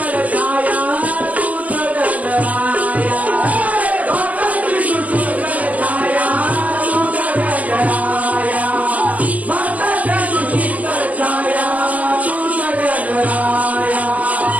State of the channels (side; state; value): left; late; 0.076 ms